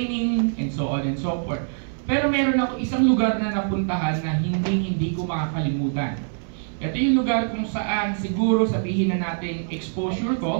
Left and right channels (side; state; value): left; silent; 63 dB below the other